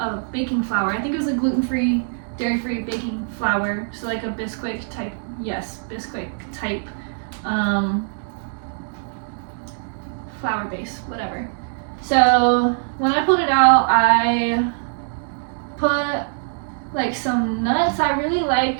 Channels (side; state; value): left; silent; digital silence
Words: baking flour. I think it was a gluten-free, dairy-free baking flour, so like a Bisquick type, yes, Bisquick type flour base, whatever. So when I pulled it out, I put like some nuts. I really like